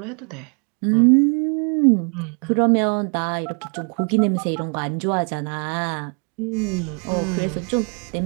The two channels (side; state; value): left; quieter; 39.6 dB